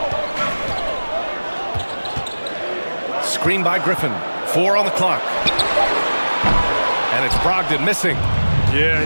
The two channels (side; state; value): both; inverted; correlation -1.00